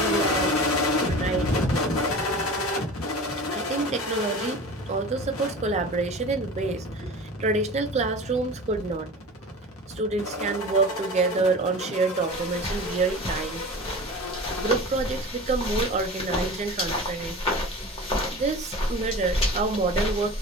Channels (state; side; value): normal; both; correlation 0.35